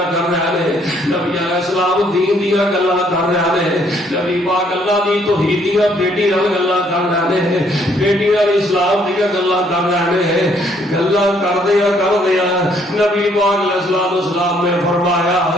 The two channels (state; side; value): normal; both; correlation 0.67